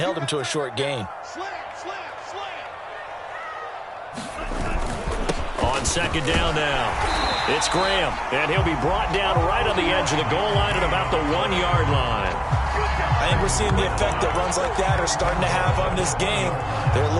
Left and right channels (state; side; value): identical; both; correlation 1.00